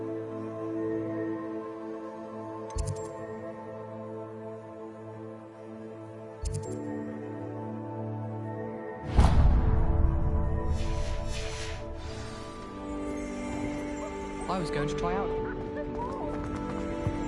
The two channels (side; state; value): both; identical; correlation 1.00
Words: I was going to try out.